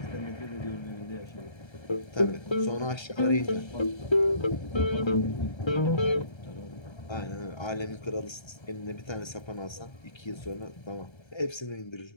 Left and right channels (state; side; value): late; right; 1.3 ms